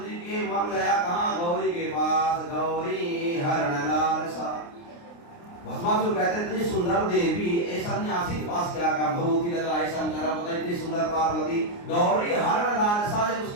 जी के मन गया कहाँ, गौरी के पास, गौरी हरण लालसा। भस्मासुर कहते इतनी सुंदर देवी ऐसा सन्यासी के पास क्या काम, भगवती लग रहा है शंकर पता इतनी सुंदर पार्वती। गौरी हरण लालसा जब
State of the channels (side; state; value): right; late; 29 ms